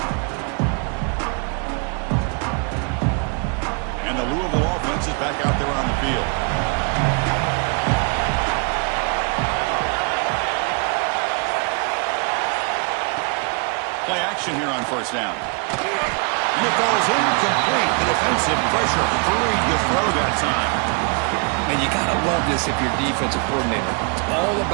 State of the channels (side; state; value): left; quieter; 36.4 dB